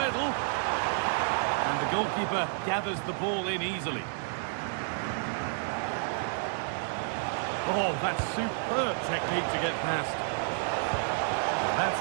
And the goalkeeper gathers the ball in easily. Oh, that's superb technique to get past. That's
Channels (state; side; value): silent; left; digital silence